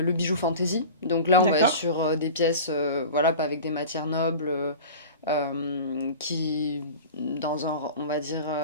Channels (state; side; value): inverted; both; correlation -0.35